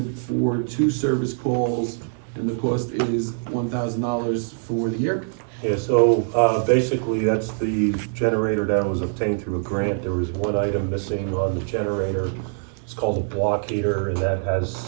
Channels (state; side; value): silent; left; 63 dB below the other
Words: for 2 service calls, and the cost is $1,000 for the year. Yeah, so, basically, that's the generator that was obtained through a grant. There was one item missing on the generator. It's called a block heater, and that has